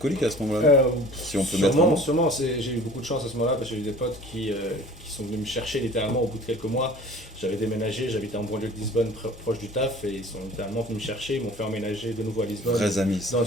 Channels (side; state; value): both; normal; correlation 0.46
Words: à ce moment-là. Si on peut mettre un mot. Sûrement, j'ai eu beaucoup de chance à ce moment-là parce que j'ai eu des potes qui sont venus me chercher littéralement au bout de quelques mois. J'avais déménagé, j'habitais en banlieue de Lisbonne, proche du taf, et ils sont littéralement venus me chercher, ils m'ont fait emménager de nouveau à Lisbonne, Vrais amis. Ça. dans